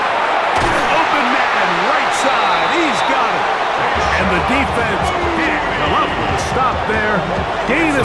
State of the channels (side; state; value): both; identical; correlation 1.00